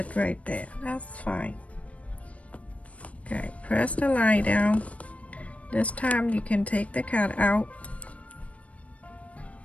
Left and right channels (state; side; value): late; right; 0.065 ms